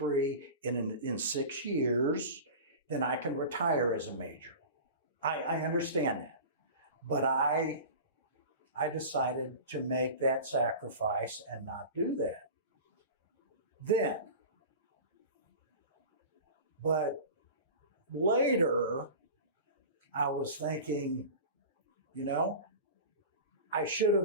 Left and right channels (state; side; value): inverted; both; correlation -0.34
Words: in 6 years, then I can retire as a major. I understand that. But I decided to make that sacrifice and not do that. Then, but later, I was thinking, you know, I should